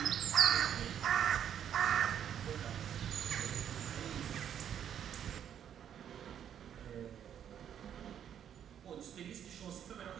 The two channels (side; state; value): left; quieter; 9.3 dB